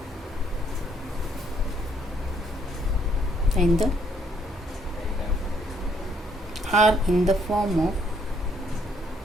And the are in the form of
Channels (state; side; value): normal; both; correlation 0.68